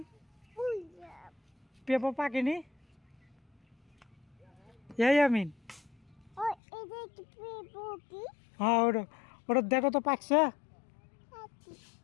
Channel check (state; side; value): drops out; right; at 6.6 s